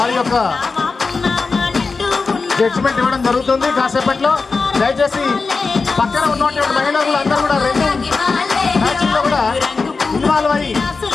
యొక్క జడ్జిమెంట్ ఇవ్వడం జరుగుతుంది. కాసేపట్లో దయచేసి పక్కన ఉన్నటువంటి మహిళలు అందరూ కూడా 2 మ్యాచ్ల్లో కూడా ఇన్వాల్వ్ అయ్యి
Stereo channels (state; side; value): quieter; right; 4.3 dB